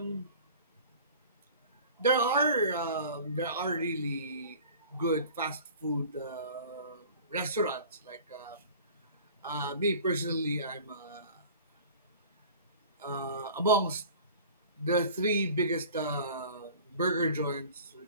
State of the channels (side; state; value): both; inverted; correlation -0.43